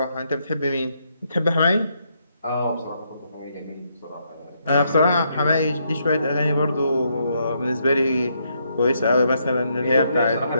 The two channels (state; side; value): inverted; both; correlation -0.76